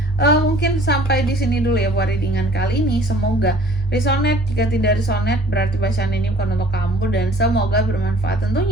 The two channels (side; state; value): both; normal; correlation 0.53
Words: mungkin sampai di sini dulu ya buat readingan kali ini. Semoga resonate. Jika tidak resonate berarti bacaan ini bukan untuk kamu, dan semoga bermanfaat